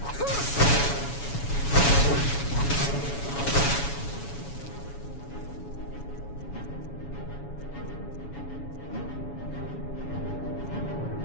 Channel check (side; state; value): right; late; 7.1 ms